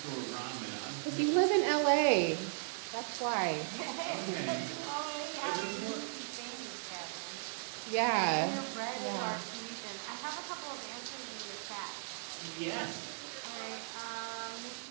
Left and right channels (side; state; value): left; silent; 53 dB below the other